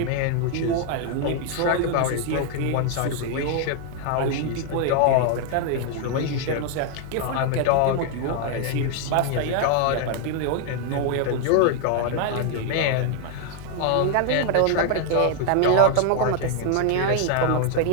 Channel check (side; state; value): both; different; correlation 0.00